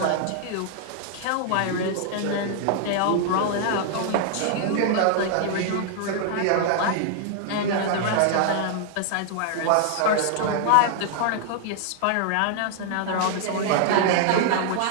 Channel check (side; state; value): both; different; correlation 0.00